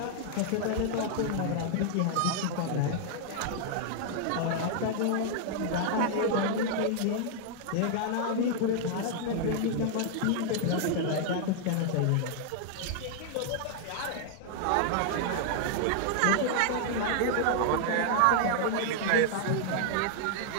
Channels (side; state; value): both; different; correlation 0.00